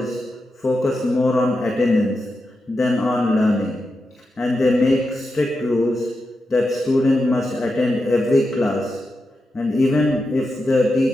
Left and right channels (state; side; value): normal; both; correlation 0.88